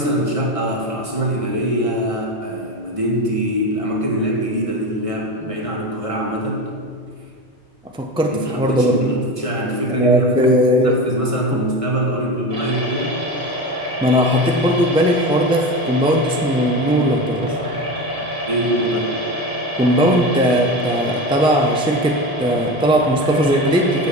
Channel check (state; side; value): normal; both; correlation 0.26